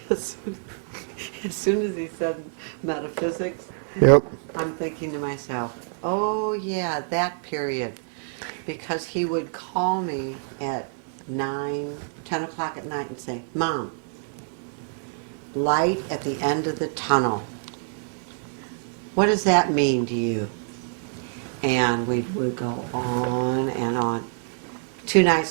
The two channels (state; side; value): silent; left; 61 dB below the other